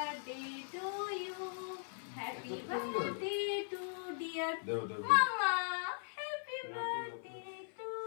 to you, happy birthday to dear দেও দেও মামা, হ্যাপি বার্থডে টু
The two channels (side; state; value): right; silent; 52 dB below the other